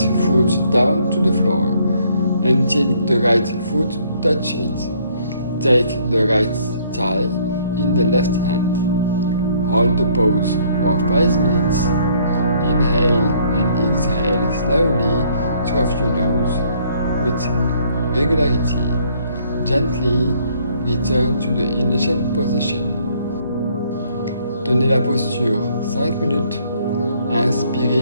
down to the floor, until the right foot touches it. Take the right thigh in the left hand. Hold the pose for 5 minutes. Inhale and exhale slowly through your nose with regularity. Gently return to the initial position. Tenez la posture 5 minutes. Inspirez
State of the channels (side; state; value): both; inverted; correlation -0.64